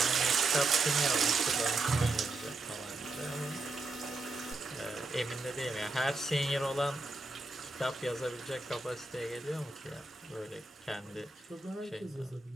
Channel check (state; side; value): quieter; left; 3.1 dB